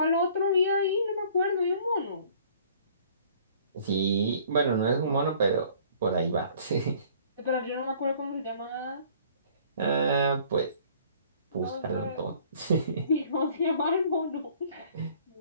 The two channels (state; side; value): inverted; both; correlation -0.55